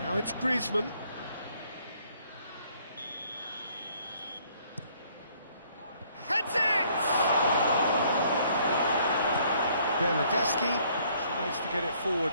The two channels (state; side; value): inverted; both; correlation -0.63